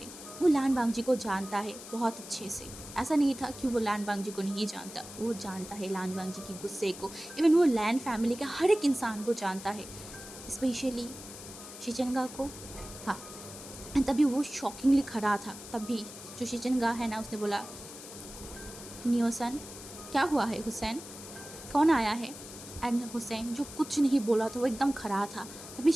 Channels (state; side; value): noise; left; hiss, 13 dB below the sound